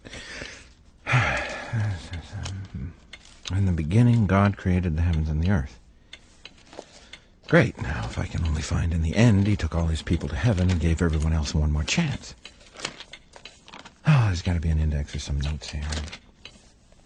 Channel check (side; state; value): both; identical; correlation 1.00